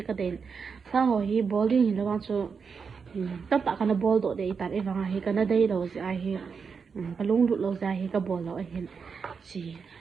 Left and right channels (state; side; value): quieter; left; 5.7 dB